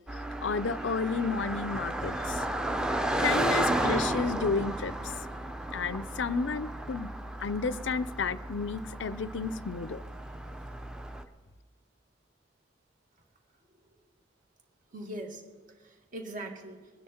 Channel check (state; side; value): normal; both; correlation 0.49